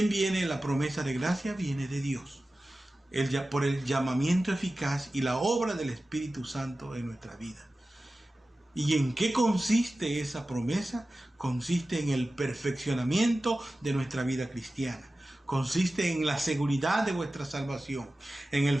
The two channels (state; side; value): normal; both; correlation 0.95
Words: viene la promesa de gracia? Viene de Dios. Por el llamamiento eficaz y la obra del Espíritu Santo en nuestra vida. ¿Y en qué consiste esa promesa? Consiste en el perfeccionamiento de nuestra vida cristiana. Consiste en la seguridad de vuestra salvación, en el